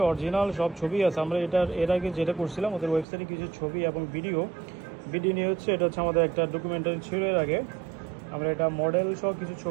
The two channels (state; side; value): drops out; left; at 3.1 s